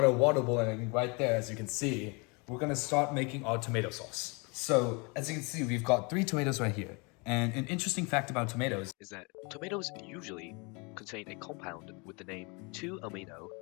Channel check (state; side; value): quieter; right; 30.2 dB